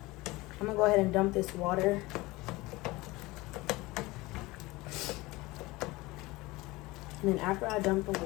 I'm gonna go ahead and dump this water. And then after I dump the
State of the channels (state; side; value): quieter; right; 21.2 dB